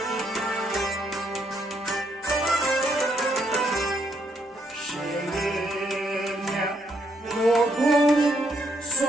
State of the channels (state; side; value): normal; both; correlation 0.74